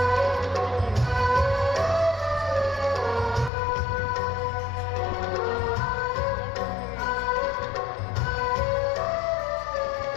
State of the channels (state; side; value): drops out; right; at 3.5 s